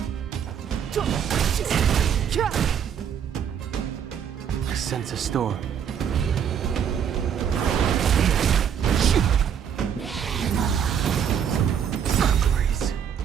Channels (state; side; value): quieter; left; 8.3 dB